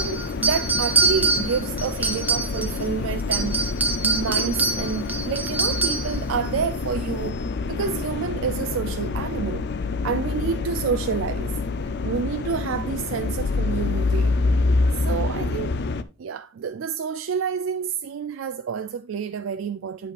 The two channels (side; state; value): both; normal; correlation 0.16